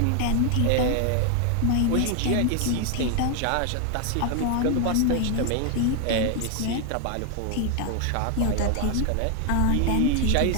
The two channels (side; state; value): both; different; correlation 0.00